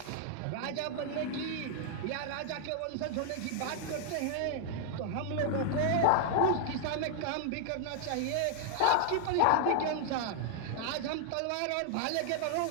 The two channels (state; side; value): different; both; correlation 0.00